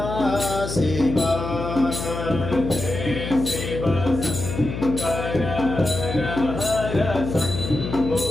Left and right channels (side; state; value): left; noise; hum, 6 dB below the sound